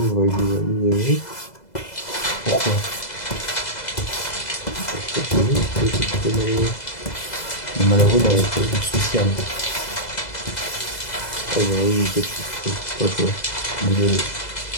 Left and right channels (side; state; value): right; late; 2.0 ms